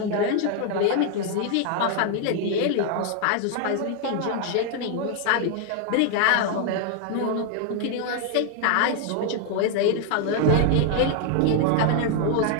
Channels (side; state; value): both; different; correlation 0.00